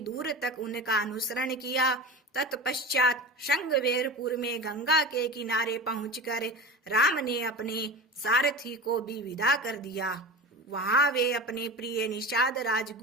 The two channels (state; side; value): normal; both; correlation 0.31